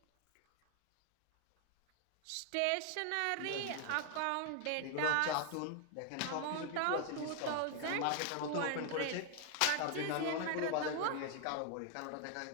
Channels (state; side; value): different; both; correlation 0.00